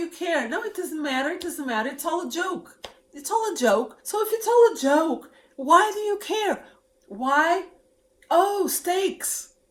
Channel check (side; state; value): both; identical; correlation 1.00